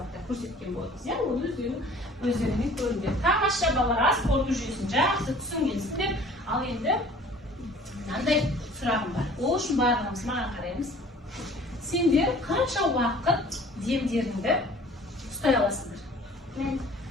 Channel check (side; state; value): both; normal; correlation 0.49